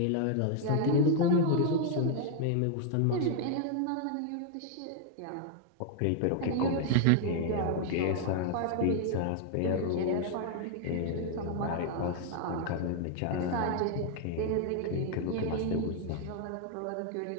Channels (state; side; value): different; both; correlation 0.00